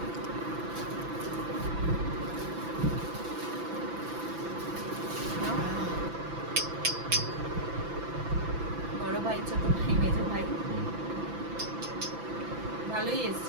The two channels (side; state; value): left; late; 6.0 ms